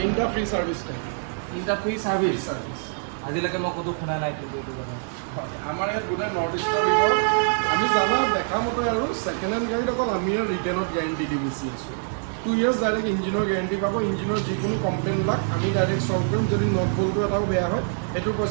ফ্ৰী ছাৰ্ভিচ থাকে। 3টা ফ্ৰী ছাৰ্ভিচ। আজিলৈকে মই ক'তো শুনা নাই কিন্তু এইটো কথা। আমাৰ ইয়াত গোটেই নৰ্থ ইষ্টৰ ভিতৰত আমি জানা দেখা মতে আৰু ছেকেণ্ড হেণ্ড গাড়ীত অকল আমি ৰিটেইনত গেৰেণ্টি দি বেছি আছোঁ। 2 years ডাইৰেক্ট ইঞ্জিনৰ গেৰেণ্টি পাব। ইঞ্জিনৰ যিকোনো কমপ্লেইনবিলাক আমি ডাইৰেক্ট চল্ভ কৰিম। যদি নট বল্টটো এটাও বেয়া হয় সেইটোৰ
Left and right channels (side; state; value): left; silent; digital silence